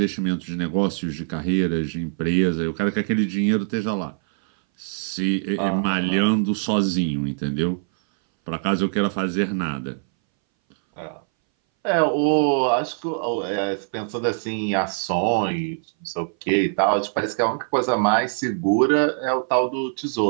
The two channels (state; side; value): silent; left; 61 dB below the other